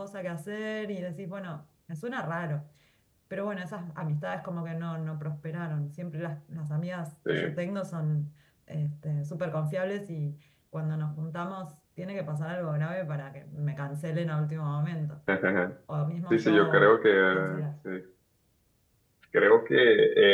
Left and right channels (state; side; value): identical; both; correlation 1.00